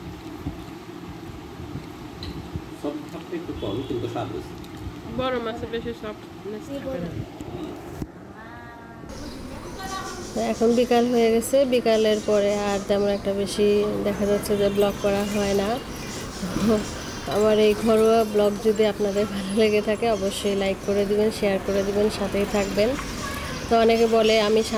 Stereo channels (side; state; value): both; identical; correlation 1.00